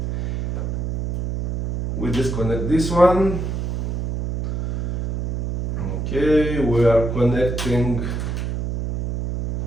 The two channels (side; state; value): right; noise; hum, 1 dB below the sound